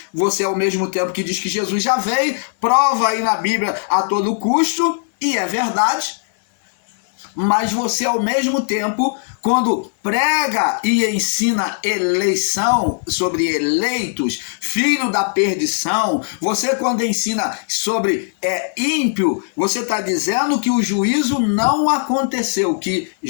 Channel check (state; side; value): silent; right; 59 dB below the other